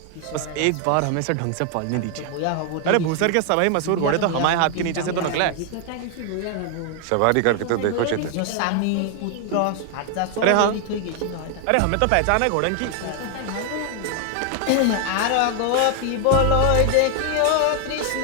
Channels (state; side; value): different; both; correlation 0.00